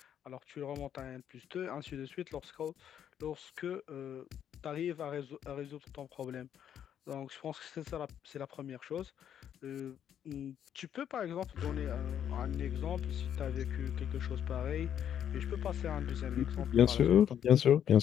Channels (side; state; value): right; quieter; 9.5 dB